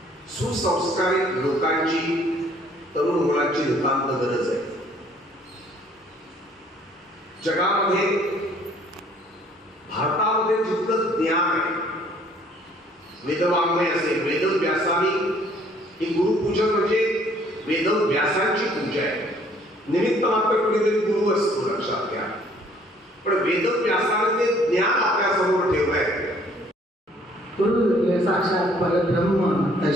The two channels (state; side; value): normal; both; correlation 0.60